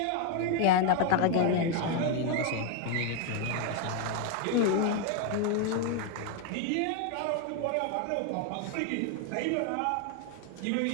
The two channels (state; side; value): different; both; correlation 0.01